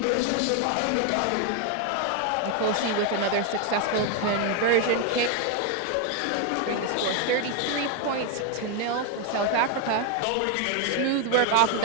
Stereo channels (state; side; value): different; both; correlation 0.01